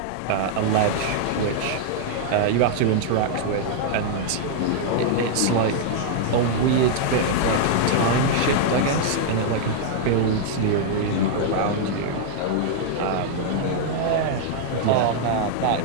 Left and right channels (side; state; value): both; different; correlation -0.01